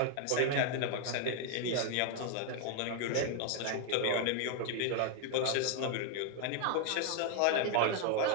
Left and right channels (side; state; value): both; different; correlation 0.00